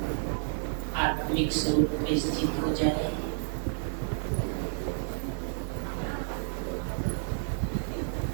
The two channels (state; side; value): silent; left; digital silence